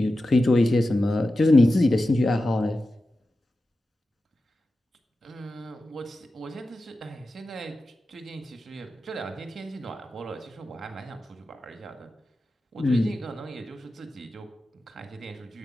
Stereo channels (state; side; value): normal; both; correlation 0.92